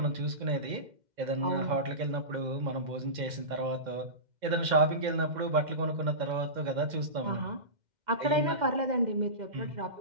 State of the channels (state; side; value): late; left; 2.1 ms